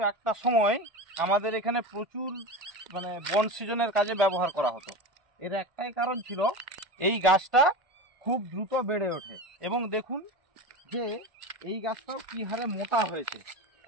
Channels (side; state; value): left; late; 1.5 ms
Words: একটা সময় আমাদের এখানে প্রচুর বন সৃজনের কাজে ব্যবহার করা হতো। এর একটাই কারণ ছিল এই গাছটা খুব দ্রুত বেড়ে ওঠে, এবং দেখুন যে এই গাছটাও কী হারে মোটা হয়েছে,